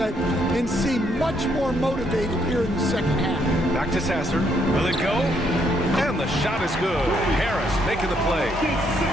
and seem much more motivated here in the second half. Back to Sasser. Will it go? And the shot is good. Harris making the play.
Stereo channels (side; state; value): both; normal; correlation 0.72